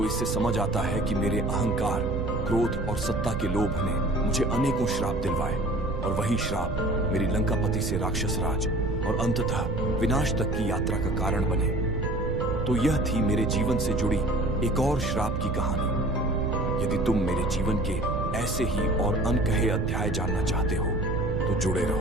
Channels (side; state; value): right; noise; rumble, 4 dB below the sound